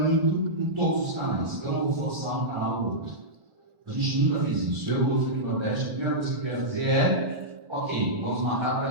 em todos os canais. Eu não vou forçar um canal ou outro. A gente nunca fez isso. Eu vou no Nordeste, a primeira coisa que eu quero fazer é, ok, vamos marcar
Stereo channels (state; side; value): late; left; 1.4 ms